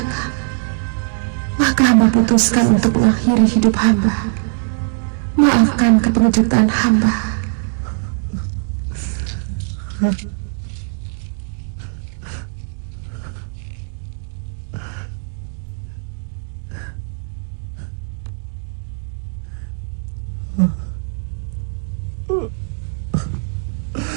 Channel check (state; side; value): silent; left; 60 dB below the other